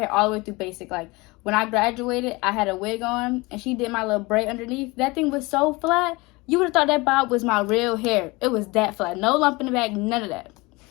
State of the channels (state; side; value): quieter; right; 24.0 dB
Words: all the way through basic. Like, when I graduated, I had a wig on, and she did my little braid underneath. That thing was so flat. You would have thought that bob was my real hair. It was that flat. No lump in the back, none of that.